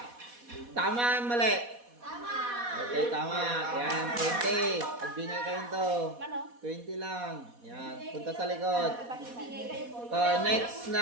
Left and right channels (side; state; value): left; late; 4.1 ms